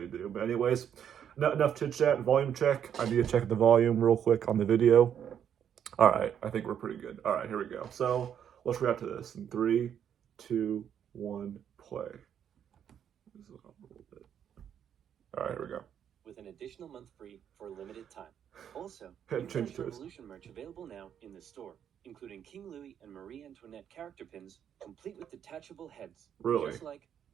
do. But anyways, enough chit chat. Volume check. I need to check the volume real quick on the video. All right, I think we're pretty good. All right, here we go. So let's react to this in 3, 2, 1, play. All right, here we go. With an additional month free for a limited time. Also, change to Revolution merch available now in the store, including King Louis and Marie Antoinette character pins, complete with detachable heads. Really? Just like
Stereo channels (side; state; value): left; quieter; 9.0 dB